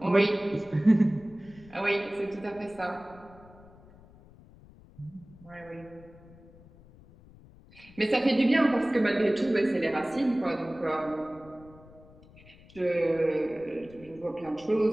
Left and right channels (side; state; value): left; noise; rumble, 23 dB below the sound